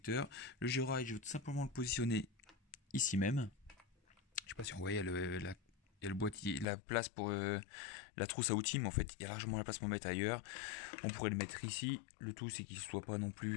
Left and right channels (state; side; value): drops out; right; at 6.7 s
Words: Le GeoRide, je vais tout simplement le positionner ici même. Je sais pas si on voit, il y a le boîtier, la place pour la trousse à outils, mais en fait, il y a largement la place pour mettre ailleurs. On pourrait le mettre ici. Le tout, c'est qu'il ne soit pas non